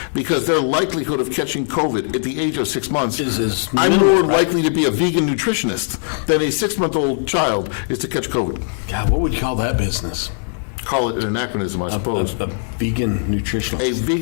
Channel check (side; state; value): right; silent; digital silence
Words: because their likelihood of catching COVID at the age of 6 months, Is I'm minimal, more right? likely to be a vegan nutritionist than a 6-month-old child is to catch COVID. God, what would you call that business? Call it an anachronism, I suppose. A vegan nutritionist. A